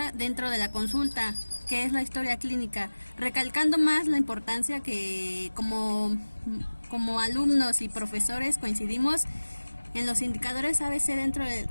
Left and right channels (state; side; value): inverted; both; correlation -1.00